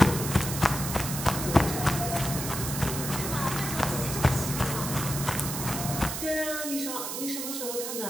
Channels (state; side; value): noise; right; hiss, 4 dB below the sound